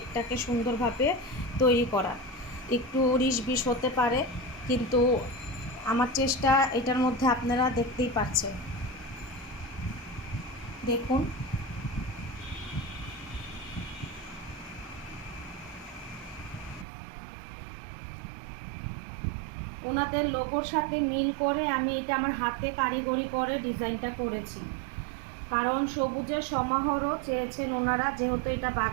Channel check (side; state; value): left; drops out; at 16.9 s